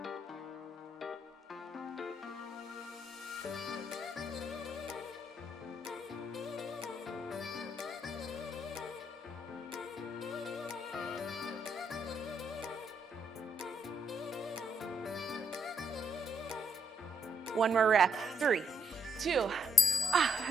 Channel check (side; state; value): both; normal; correlation 0.75